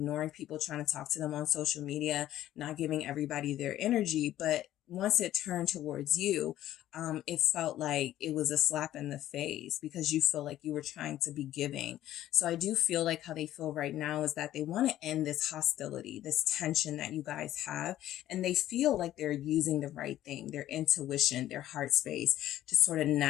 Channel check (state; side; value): quieter; right; 13.3 dB